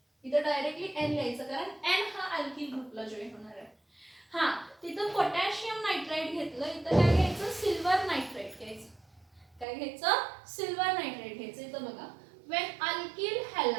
इथं डायरेक्टली N लिहायचं कारण N हा अल्किल ग्रुपला जॉईन होणार आहे. हा तिथं पोटॅशियम नायट्राइट घेतलं, इथं काय घ्यायचं, सिल्वर नायट्राइट घ्यायचं. काय घ्यायचं, सिल्वर नायट्राइट घ्यायचं. इथं बघा, when alkyl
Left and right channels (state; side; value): drops out; left; at 9.7 s